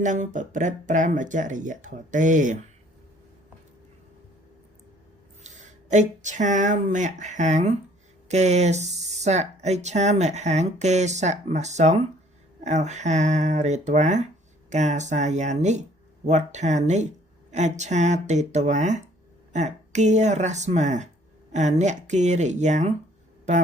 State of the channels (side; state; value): both; normal; correlation 0.58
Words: នឹងប្រព្រឹត្តប្រមចរិយធម៌ទេអិច្ឆាមហੰកេសៈអិច្ឆាមហੰកេសមសង្ឃអហារេត្វាកាសាយានិវត្ថានិអច្ឆាតេតវាអគារស្មាអនគិរិយ៉ាងប